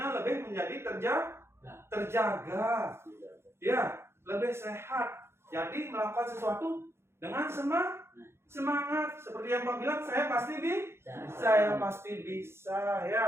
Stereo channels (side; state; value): left; late; 0.12 ms